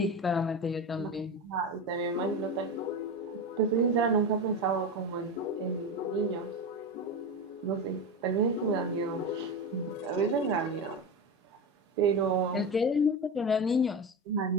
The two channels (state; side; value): normal; both; correlation 0.21